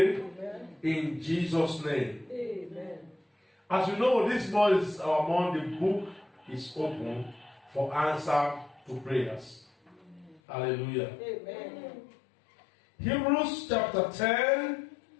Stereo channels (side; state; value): right; drops out; at 10.4 s